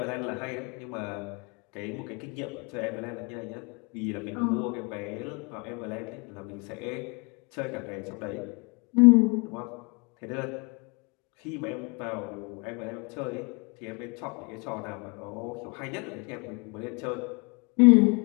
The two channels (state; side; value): quieter; right; 31.0 dB